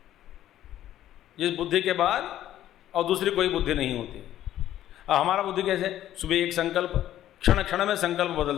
जिस बुद्धि के बाद और दूसरी कोई बुद्धि नहीं होती। अब हमारा बुद्धि कैसे, सुबह एक संकल्प, क्षण क्षण में संकल्प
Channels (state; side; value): quieter; right; 12.5 dB